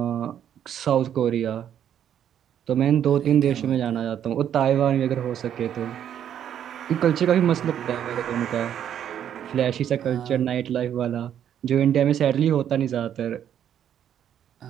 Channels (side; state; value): left; quieter; 9.8 dB